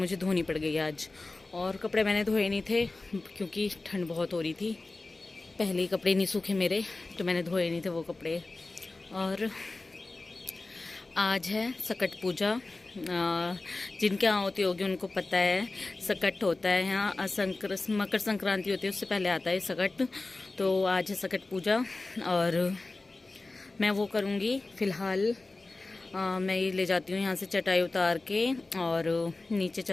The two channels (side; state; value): right; quieter; 3.3 dB